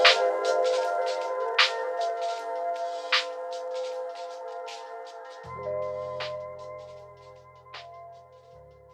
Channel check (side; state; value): both; identical; correlation 1.00